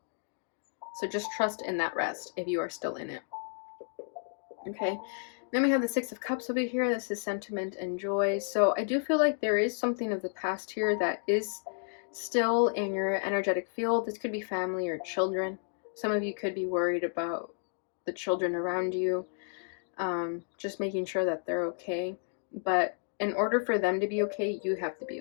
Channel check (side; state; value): right; silent; 57 dB below the other